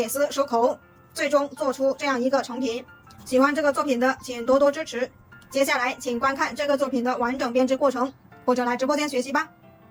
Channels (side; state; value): both; identical; correlation 1.00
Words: 丝收口，最终做出这样一个成品。喜欢这个作品的请多多支持，接下来请观看这个作品的完整编织过程，或者来直播间学习吧。